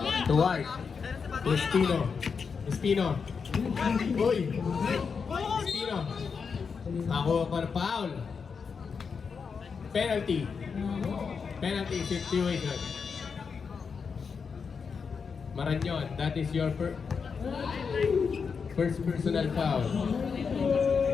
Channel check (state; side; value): quieter; right; 5.7 dB